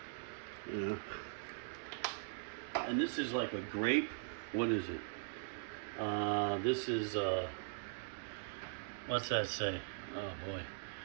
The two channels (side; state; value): left; silent; digital silence